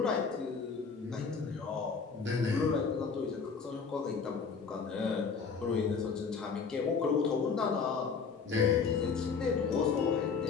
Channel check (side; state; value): right; quieter; 5.5 dB